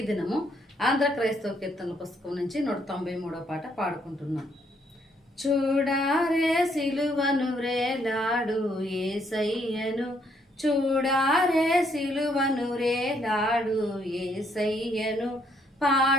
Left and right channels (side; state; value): both; normal; correlation 0.71